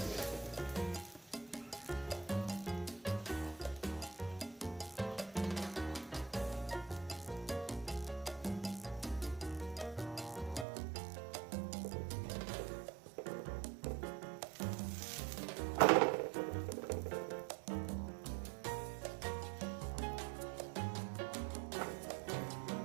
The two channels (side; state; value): left; drops out; at 10.7 s